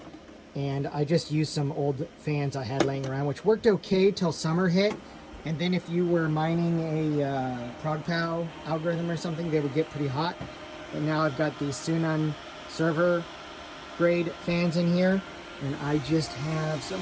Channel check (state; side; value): identical; both; correlation 1.00